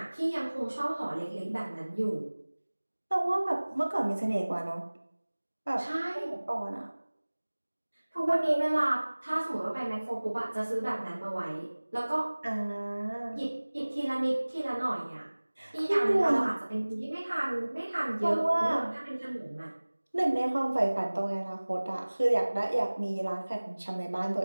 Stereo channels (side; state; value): both; inverted; correlation -1.00